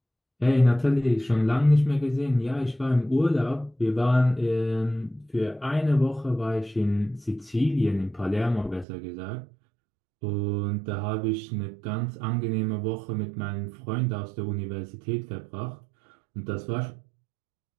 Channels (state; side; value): drops out; left; at 8.8 s